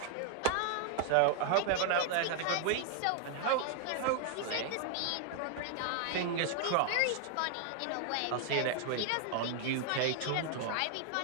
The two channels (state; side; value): different; both; correlation 0.00